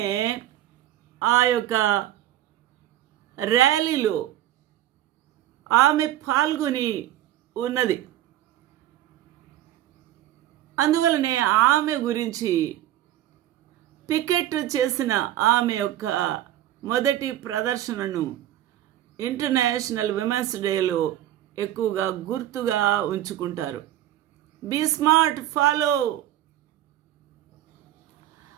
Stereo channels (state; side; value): quieter; left; 13.0 dB